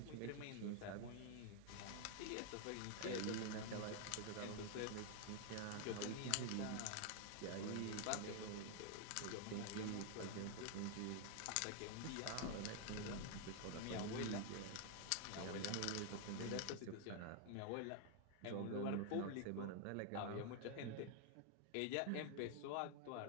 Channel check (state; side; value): different; both; correlation 0.00